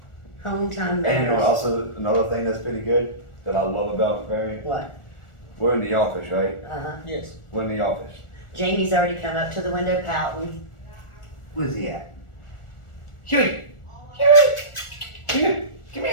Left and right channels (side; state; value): right; late; 1.4 ms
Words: Home time And matters. also another thing that's pretty good that I love about Variant, What? we're in the office, right? Uh-huh. Yes. We're in the office. Jamie's already come up to the window pouting. Where's he at? Huey! Huey! Come here! Come